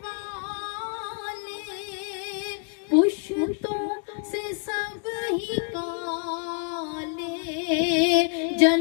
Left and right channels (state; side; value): quieter; right; 39.8 dB